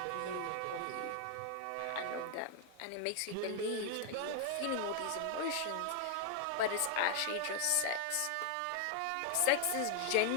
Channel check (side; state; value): both; different; correlation 0.00